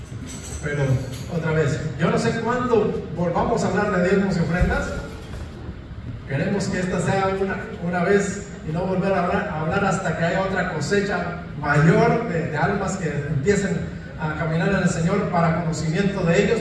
Pero otra vez, yo no sé cuándo volvamos a hablar de diezmos y ofrendas. Queremos que esta sea una vez y no volver a hablar hasta que haya otra cosecha mayor de almas que empiecen a caminar en el Señor para conocimiento de ellos,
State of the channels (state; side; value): identical; both; correlation 1.00